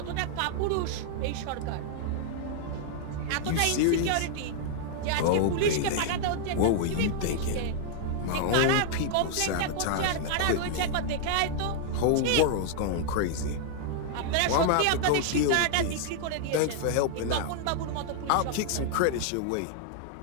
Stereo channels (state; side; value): different; both; correlation -0.01